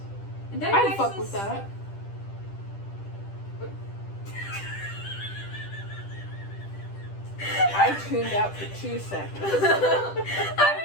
And I'd fuck with that. I tuned out for 2 seconds.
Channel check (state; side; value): late; right; 10 ms